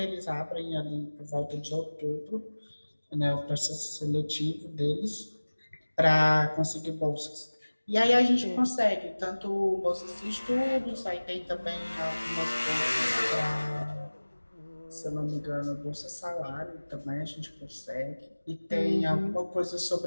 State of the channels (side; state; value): both; inverted; correlation -1.00